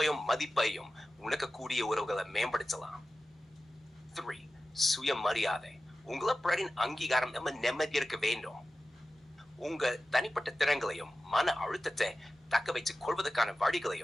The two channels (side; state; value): both; normal; correlation 0.94